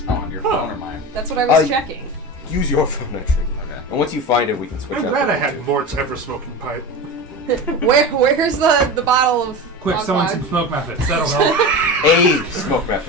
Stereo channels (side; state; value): both; normal; correlation 0.27